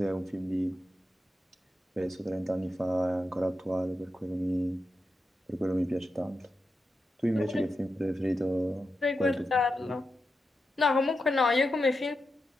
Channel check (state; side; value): normal; both; correlation 0.88